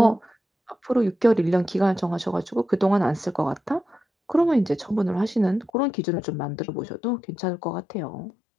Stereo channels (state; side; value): drops out; right; at 5.7 s